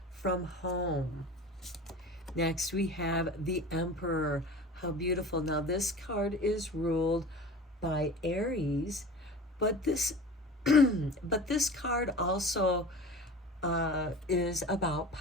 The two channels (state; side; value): normal; both; correlation 0.37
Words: from home. Next, we have the Emperor. How beautiful. Now, this card is ruled by Aries, but this card also is about